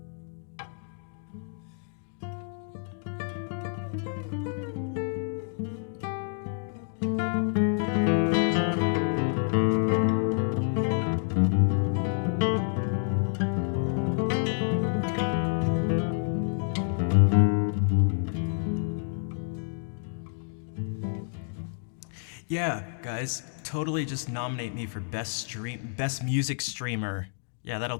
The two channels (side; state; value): right; silent; 59 dB below the other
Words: Yeah, guys, totally just nominate me for best music streamer. Yeah, that'll